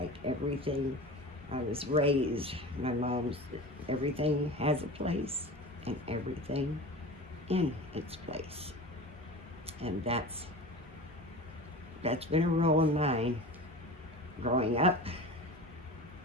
everything. I was raised, my mom's, everything has a place and everything in its place. And that's been a rule of mine growing up,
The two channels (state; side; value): normal; both; correlation 0.33